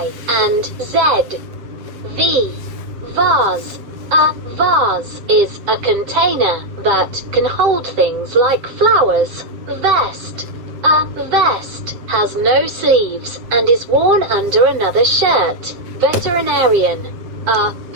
and Z. V. Vase. A vase is a container that can hold things like flowers. Vest. A vest has no sleeves and is worn under another shirt. Veterinarian. A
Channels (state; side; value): late; left; 7.9 ms